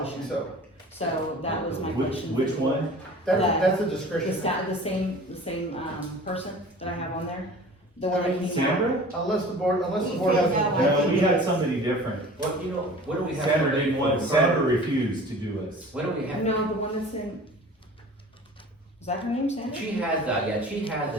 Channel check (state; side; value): normal; both; correlation 0.43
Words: so, So that was my Which, question. which one? that's a The discretion. the same, person that I have on there, the one that came out. Sandra? Unless the board has. No, we had somebody different. Well, you know, what do we have? Sandra didn't want, Sandra refused to do us. What do we have? No, the one that's in, Is that her name, Sandra? She has, she